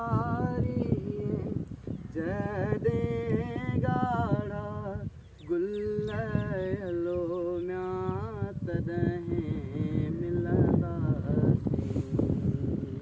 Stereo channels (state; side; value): identical; both; correlation 1.00